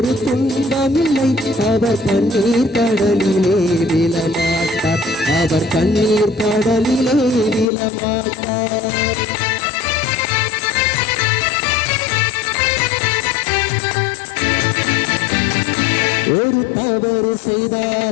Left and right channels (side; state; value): right; drops out; at 7.7 s